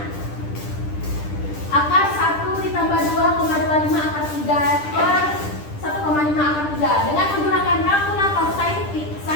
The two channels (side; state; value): right; late; 10 ms